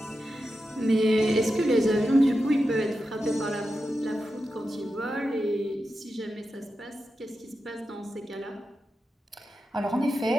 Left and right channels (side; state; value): both; normal; correlation 0.90